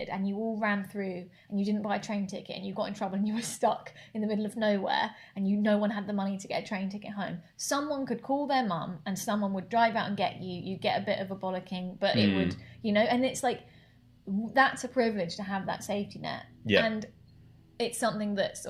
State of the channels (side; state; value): both; identical; correlation 1.00